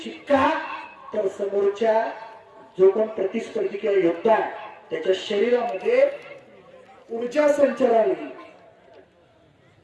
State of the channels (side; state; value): both; identical; correlation 1.00